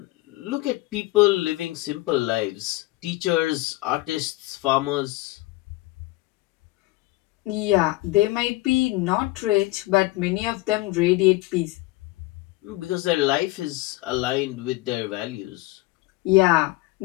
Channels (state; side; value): quieter; right; 19.8 dB